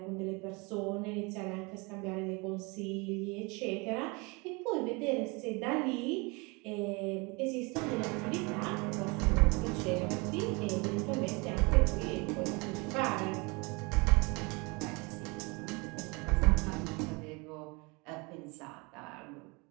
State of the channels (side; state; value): left; quieter; 28.3 dB